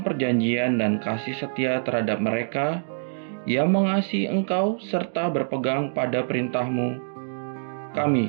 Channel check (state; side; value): silent; left; digital silence